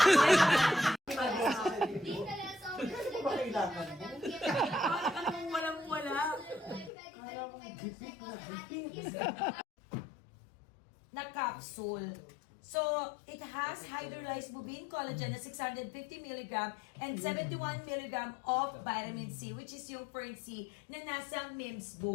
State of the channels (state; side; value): drops out; right; at 6.9 s